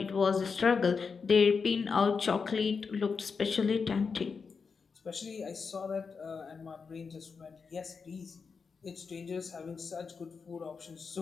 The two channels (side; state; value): right; quieter; 5.3 dB